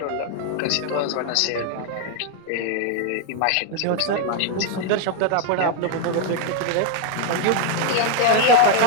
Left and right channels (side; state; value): both; different; correlation 0.01